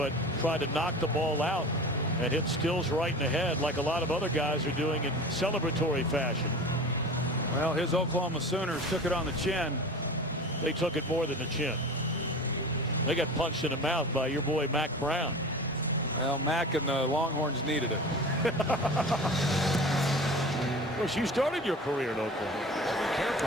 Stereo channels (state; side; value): normal; both; correlation 0.36